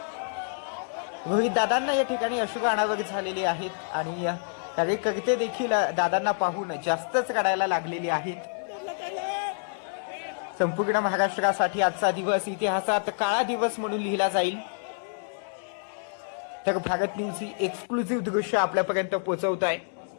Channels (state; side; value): silent; right; 60 dB below the other